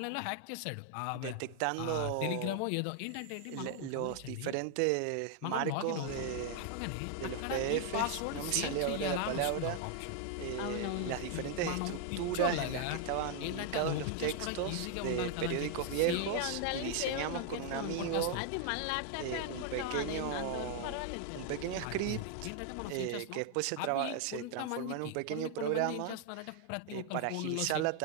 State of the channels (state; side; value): different; both; correlation 0.00